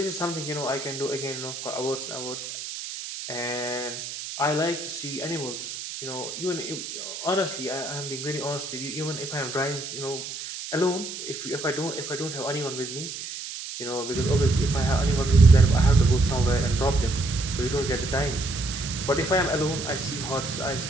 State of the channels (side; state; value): right; noise; hiss, 8 dB below the sound